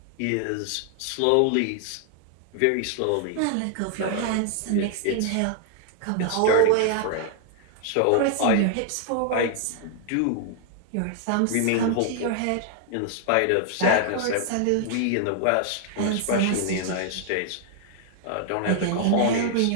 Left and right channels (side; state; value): both; different; correlation 0.00